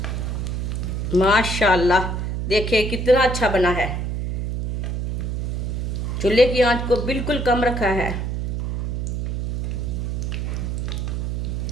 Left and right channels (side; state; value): right; noise; hum, 2 dB below the sound